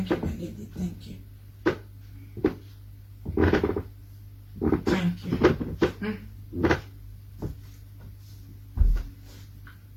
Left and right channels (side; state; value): both; identical; correlation 1.00